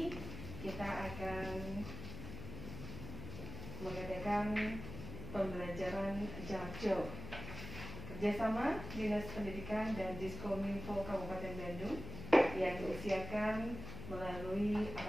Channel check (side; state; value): left; noise; hum, 9 dB below the sound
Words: kita akan mengadakan pembelajaran jarak jauh kerjasama Dinas Pendidikan dan Diskominfo Kabupaten Bandung yang diusiakan melalui